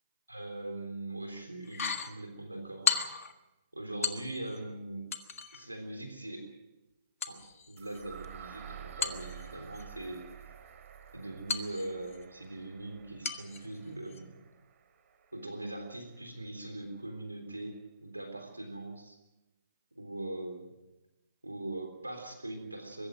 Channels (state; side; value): inverted; both; correlation -0.57